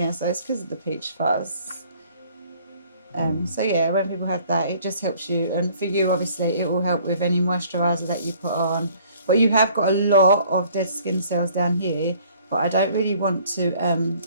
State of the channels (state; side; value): inverted; both; correlation -0.57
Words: So it's because of the peach fuzz. So yeah, when people have that, it just helps you, and for you, obviously, it will help with any moisturiser that you put on. But you have got a lot of dead skin cells down here. But I don't really want to.